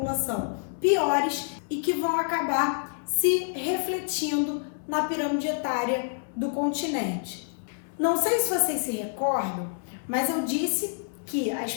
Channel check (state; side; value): silent; right; digital silence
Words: piores e que vão acabar se refletindo na pirâmide etária do continente. Não sei se vocês se recordam, mas eu disse que a